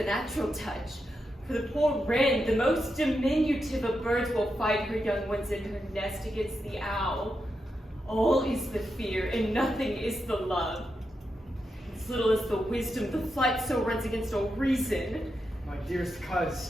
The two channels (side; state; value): both; normal; correlation 0.86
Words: natural touch. For the poor wren, the most diminutive of birds, will fight her young ones in her nest against the owl. All is the fear, and nothing is the love. As little as the wisdom, the flight so runs against all reason. My dearest